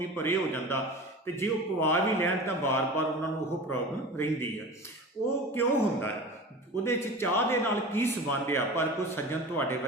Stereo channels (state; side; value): normal; both; correlation 0.34